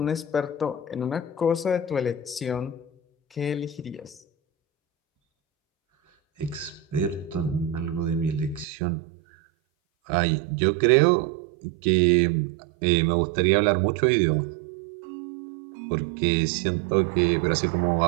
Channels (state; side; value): drops out; left; at 8.7 s